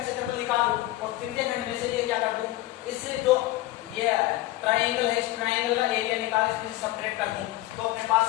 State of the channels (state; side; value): quieter; right; 17.0 dB